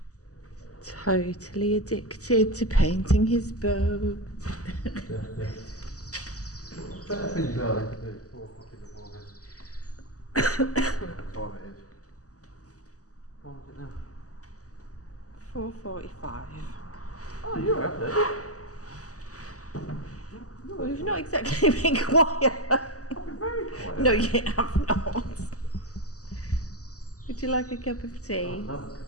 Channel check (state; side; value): late; right; 0.66 ms